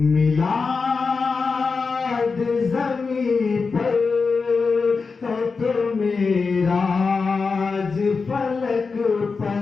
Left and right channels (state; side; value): quieter; right; 4.7 dB